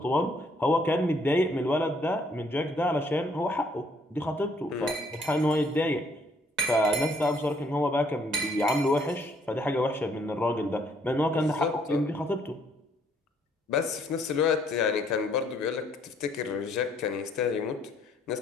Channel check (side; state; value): both; normal; correlation 0.66